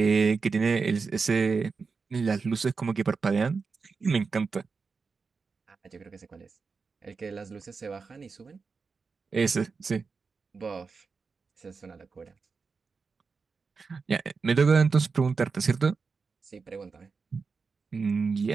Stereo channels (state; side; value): quieter; left; 4.9 dB